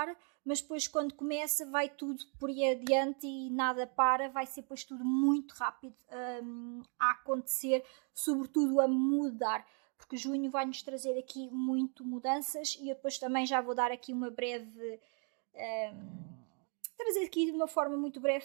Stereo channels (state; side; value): quieter; left; 39.6 dB